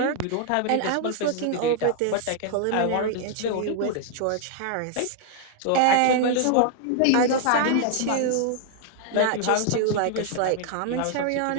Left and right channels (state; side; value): different; both; correlation 0.00